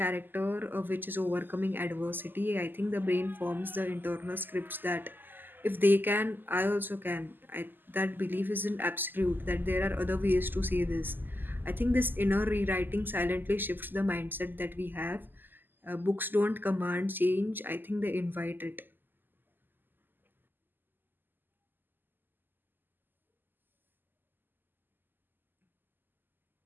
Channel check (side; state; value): left; late; 0.091 ms